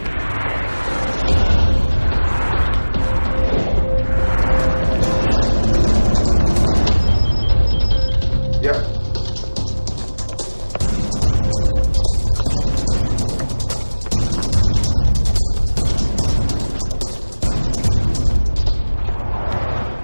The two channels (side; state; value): both; inverted; correlation -1.00